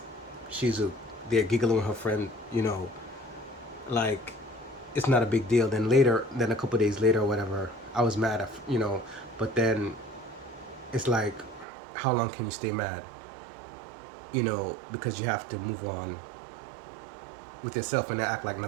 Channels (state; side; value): drops out; left; at 11.7 s